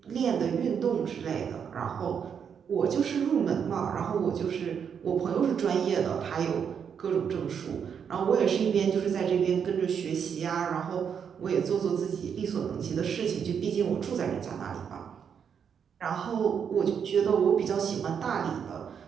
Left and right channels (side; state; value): left; quieter; 7.4 dB